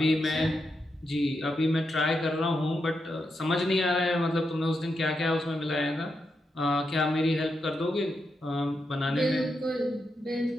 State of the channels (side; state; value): both; normal; correlation 0.84